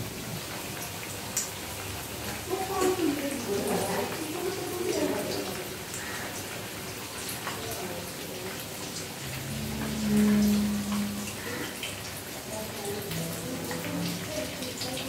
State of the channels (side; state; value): both; identical; correlation 1.00